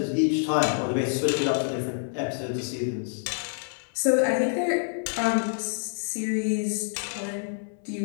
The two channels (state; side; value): silent; right; digital silence